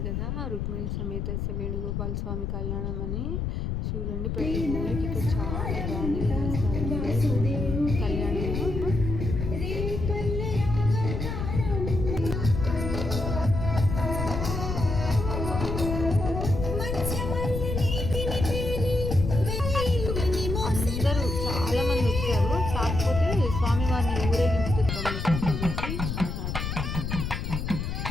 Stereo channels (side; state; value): left; noise; rumble, 3 dB below the sound